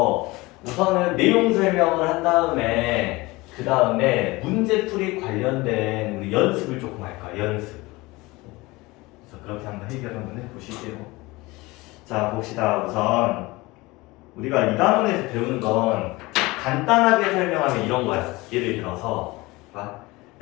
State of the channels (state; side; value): quieter; right; 21.9 dB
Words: 우선은 내용 설명을 한 다음에 그 다음에 문제풀이 관련된 우리 연습을 조금 할까. 연습. 그래서 그렇게 한번 해결 한번 해보실게요. 자, 봅시다. 우선 우리가 2단원에서 배우는 건 간단하게 설명하면 이런 거야. 예를 들어서